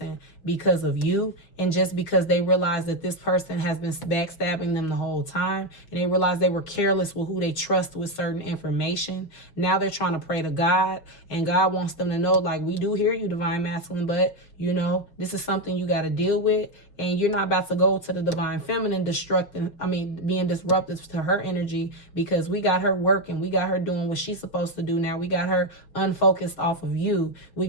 because of you, and just because they realize that this person has been backstabbing them the whole time, and they realize they were careless with who they trust with certain information. Now they're trying to pray to God, and God wants them to know, like, we do hear you, divine masculine, but this is something you got to deal with, and you're not about to go to the divine feminine being disruptive to her energy, because we got her working, we got her doing what she's supposed to do now. We got her unfocused off of you. We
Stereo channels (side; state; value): right; late; 5.5 ms